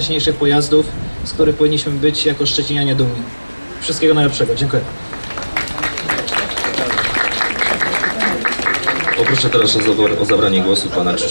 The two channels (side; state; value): both; inverted; correlation -1.00